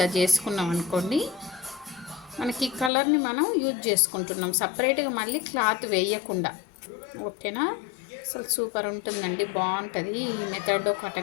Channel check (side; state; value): right; drops out; at 2.9 s